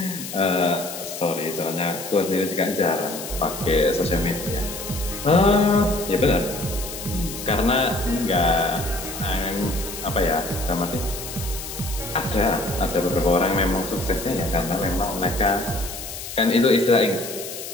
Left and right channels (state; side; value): noise; left; hiss, 9 dB below the sound